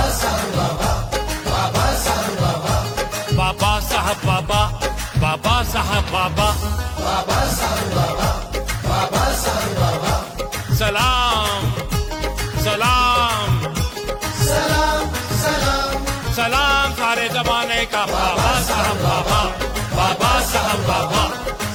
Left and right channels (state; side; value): identical; both; correlation 1.00